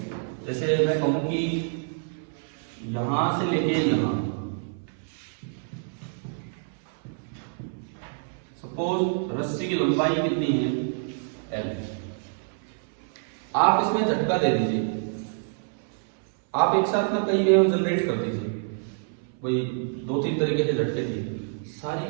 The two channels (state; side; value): silent; left; 60 dB below the other